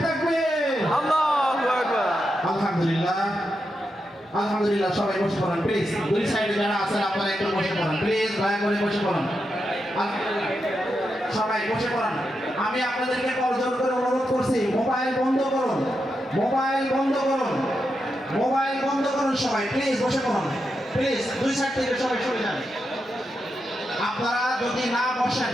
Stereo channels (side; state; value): both; normal; correlation 0.86